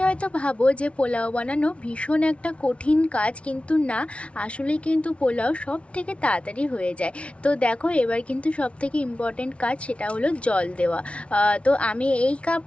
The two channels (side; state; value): right; late; 0.061 ms